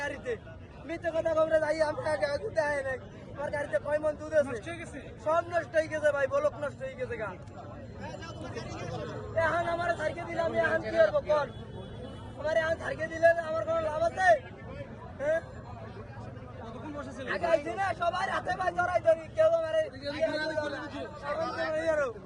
গাড়িতে। মিথ্যে কথা খবরে যাই, আমি দুধে আয় নাই। আমার গাড়িতে 6 মণ দুধ আছে, সব নষ্ট হয়ে গেছে ভাই, বলক নষ্ট হয়ে গেছে গা। এখন আমার সাইকে দিলে আমি এখন কি করবো? কোন আমার এখন সাইকে দিলে আমার কোনো লাভ আছে? হ্যাঁ, আগে আইছি না, সবাই হাতে পায়ে জড়াই ধরি, কেউ আমার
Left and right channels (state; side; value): identical; both; correlation 1.00